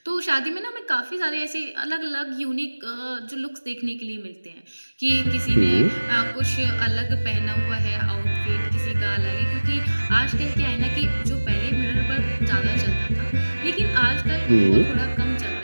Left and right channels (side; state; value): both; inverted; correlation -1.00